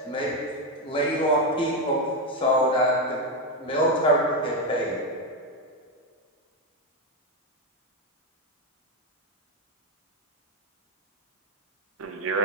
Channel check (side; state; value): both; normal; correlation 0.07